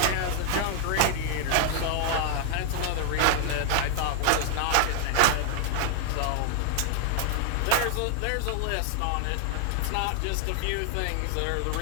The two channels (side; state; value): both; different; correlation 0.00